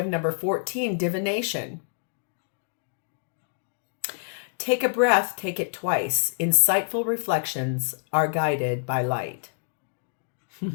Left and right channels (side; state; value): right; silent; digital silence